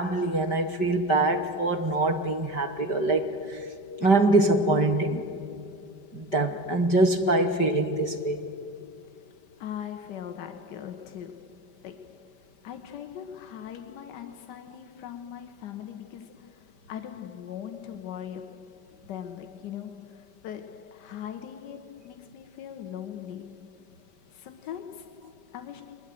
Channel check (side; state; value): right; late; 5.1 ms